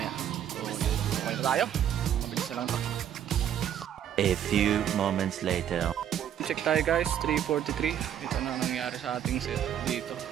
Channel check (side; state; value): left; quieter; 10.0 dB